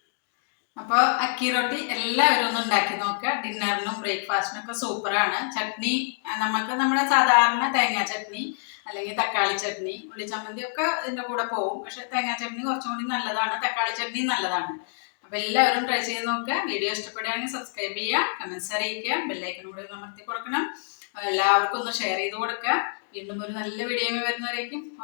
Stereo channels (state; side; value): silent; right; digital silence